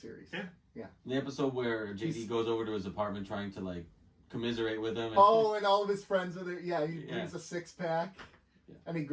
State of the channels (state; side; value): identical; both; correlation 1.00